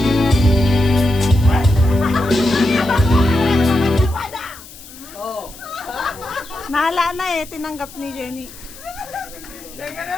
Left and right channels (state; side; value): noise; left; hiss, 18 dB below the sound